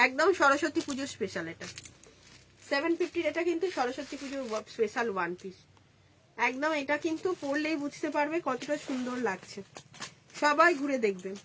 একদম সরস্বতী পুজোর স্পেশাল। এটা 750-র, এটা কিন্তু সরস্বতী পুজোর স্পেশাল ওয়ান পিস, একদম। এটা কিন্তু পরলেই বুঝতে পারবে কতটা সুন্দর লাগছে, সবাই ঘুরে দেখবেন,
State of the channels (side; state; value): both; identical; correlation 1.00